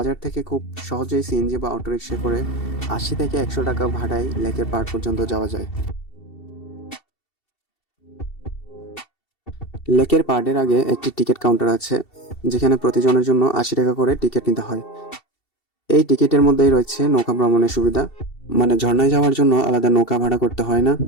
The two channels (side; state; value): right; late; 2.7 ms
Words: থেকে খুব সহজেই সিএনজি বা অটোরিকশা করে ৮০ থেকে ১০০ টাকা ভাড়ায় লেকের পাড় পর্যন্ত যাওয়া যায়। লেকের পাড়ের আগে একটি টিকিট কাউন্টার আছে, যেখানে প্রতিজনের জন্য ৮০ টাকা করে টিকিট নিতে হয়। এই টিকিটের মধ্যেই রয়েছে নৌকা ভ্রমণের সুবিধা, মানে ঝর্ণায় যাওয়ার জন্য আলাদা নৌকা ভাড়া করতে হয় না।